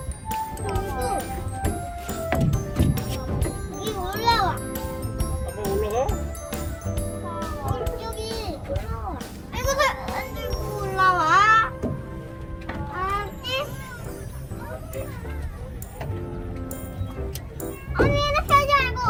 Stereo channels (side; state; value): both; identical; correlation 1.00